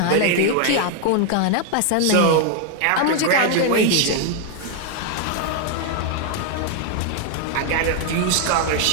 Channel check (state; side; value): different; both; correlation 0.00